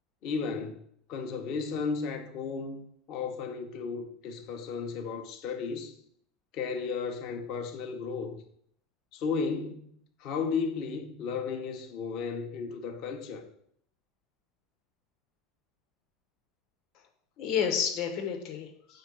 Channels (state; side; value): quieter; right; 5.4 dB